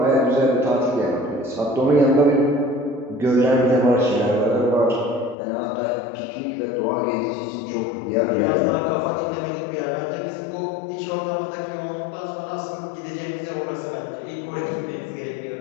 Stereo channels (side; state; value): right; drops out; at 5.4 s